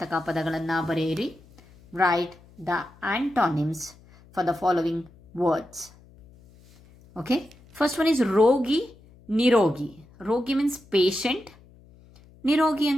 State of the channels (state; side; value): noise; left; hum, 26 dB below the sound